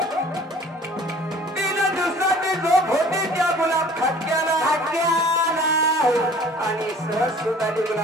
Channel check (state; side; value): normal; both; correlation 0.50